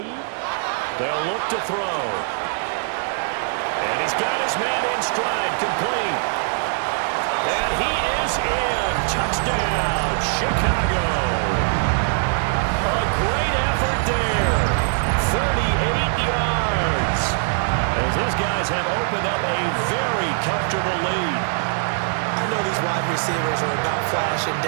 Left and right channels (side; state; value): left; silent; 64 dB below the other